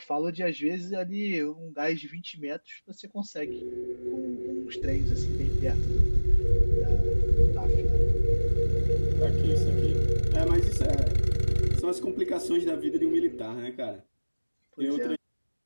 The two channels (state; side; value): inverted; both; correlation -1.00